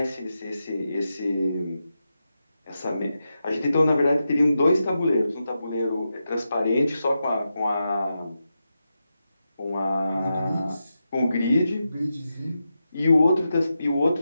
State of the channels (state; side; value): inverted; both; correlation -0.88